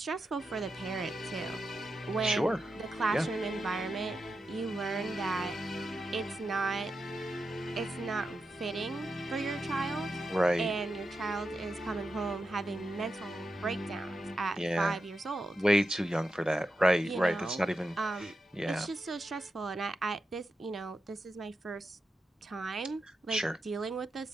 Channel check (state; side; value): normal; both; correlation 0.88